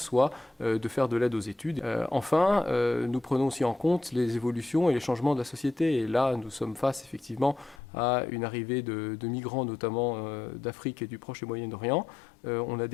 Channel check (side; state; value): right; drops out; at 7.8 s